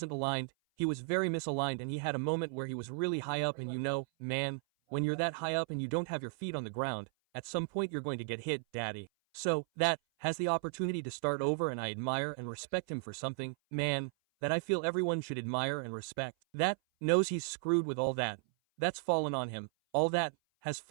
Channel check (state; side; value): silent; left; 54 dB below the other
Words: aligned. He was very misaligned and he had a moment where he was really high up and you know, man, when you're that high up and you don't have your feet on the ground, at some point you're going to get hit, daddy. So, that has the opportunity to start over and I admire and respect him for something, man, that I feel everyone should admire and respect. That knows he's screwed with all that. That's fallen on him. All that has